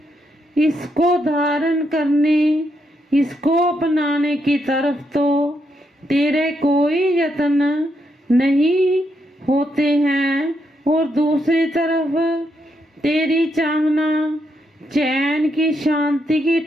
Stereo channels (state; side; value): normal; both; correlation 0.79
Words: इसको धारण करने, इसको अपनाने की तरफ तो तेरे कोई यत्न नहीं होते हैं, और दूसरी तरफ तेरी चाहना चैन की, शांति की,